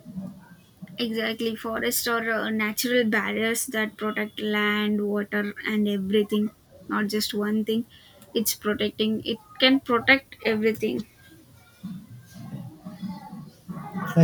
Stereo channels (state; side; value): identical; both; correlation 1.00